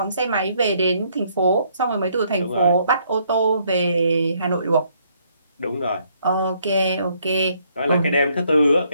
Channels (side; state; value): both; inverted; correlation -0.69